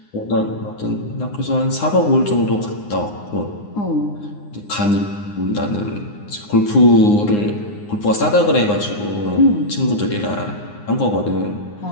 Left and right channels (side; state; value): right; late; 9.7 ms